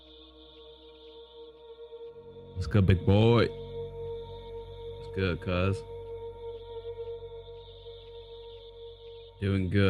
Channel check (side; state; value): both; identical; correlation 1.00